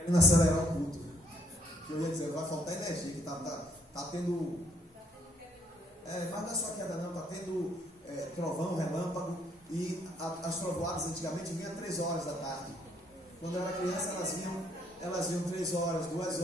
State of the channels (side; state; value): both; normal; correlation 0.66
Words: acelerar o culto, que eu ia dizer, vai faltar energia, que está tendo, mas não é só queda não, está tendo trovão, relâmpago, e as trovoadas antigamente vinham 3 horas da tarde. Quando eu era criança elas vinham 3 horas, 2